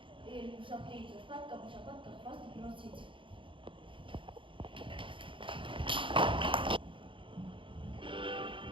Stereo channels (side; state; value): left; late; 0.25 ms